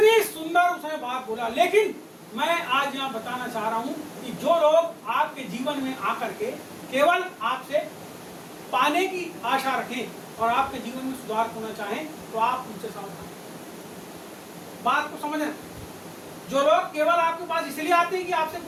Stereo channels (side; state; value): both; identical; correlation 1.00